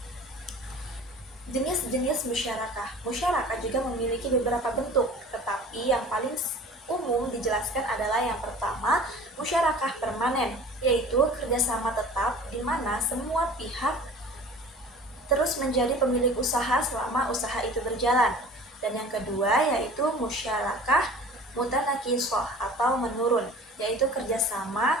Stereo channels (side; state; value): both; normal; correlation 0.43